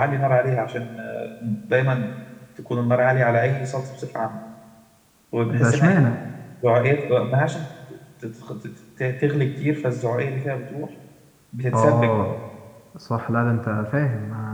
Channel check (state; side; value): identical; both; correlation 1.00